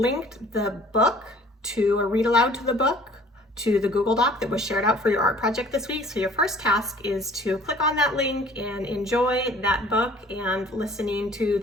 the book to a read aloud to the book to the Google Doc that was shared out for your art project this week. So your first task is to click on that link and enjoy that book and listening to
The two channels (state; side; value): normal; both; correlation 0.53